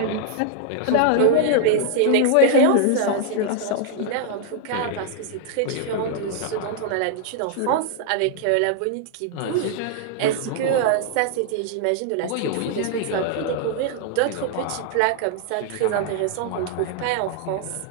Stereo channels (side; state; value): both; different; correlation 0.00